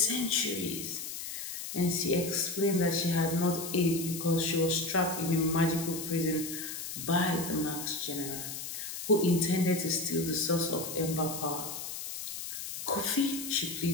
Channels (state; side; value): noise; left; hiss, 7 dB below the sound